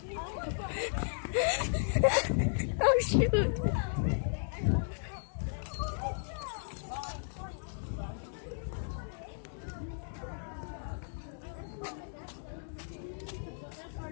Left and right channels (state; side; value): silent; right; digital silence